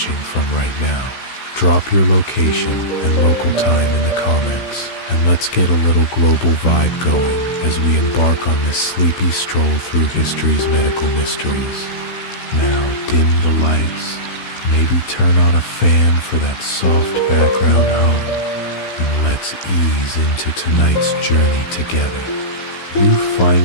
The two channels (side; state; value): right; late; 16 ms